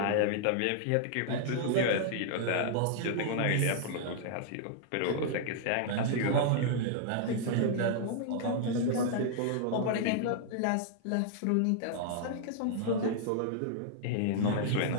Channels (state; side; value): different; both; correlation -0.01